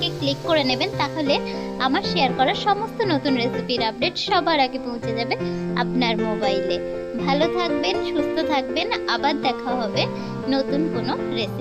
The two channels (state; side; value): identical; both; correlation 1.00